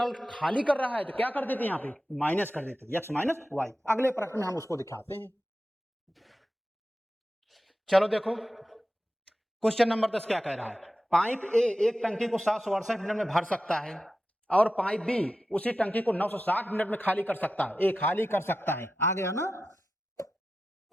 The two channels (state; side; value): normal; both; correlation 0.92